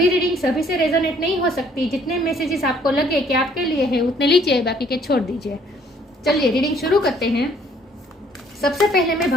रीडिंग सभी से रेजोनेट नहीं हो सकती। जितने मैसेजेस आपको लगे कि आपके लिए है उतने लीजिए, बाकी के छोड़ दीजिए। चलिए रीडिंग शुरू करते हैं। सबसे पहले मैं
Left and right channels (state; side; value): normal; both; correlation 0.62